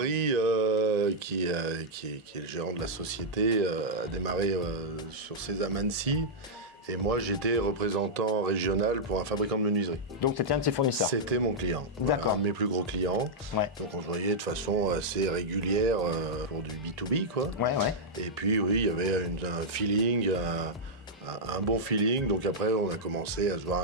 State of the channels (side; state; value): both; normal; correlation -0.07